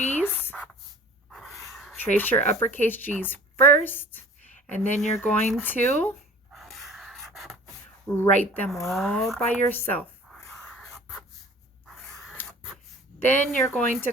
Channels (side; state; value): both; normal; correlation 0.45